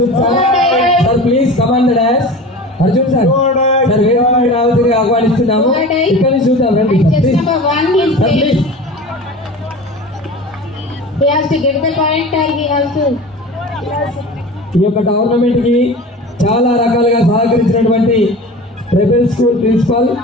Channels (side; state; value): both; normal; correlation 0.35